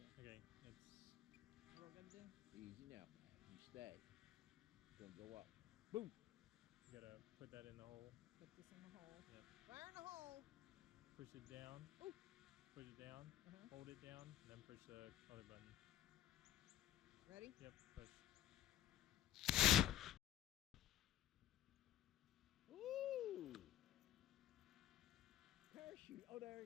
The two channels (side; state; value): right; quieter; 12.3 dB